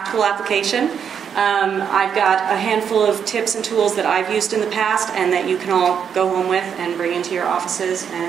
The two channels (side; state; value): left; quieter; 7.6 dB